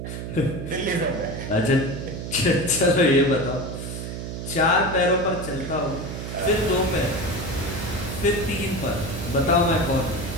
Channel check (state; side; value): noise; right; hum, 6 dB below the sound